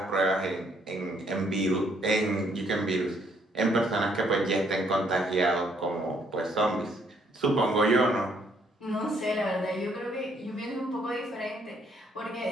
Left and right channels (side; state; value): both; normal; correlation 0.68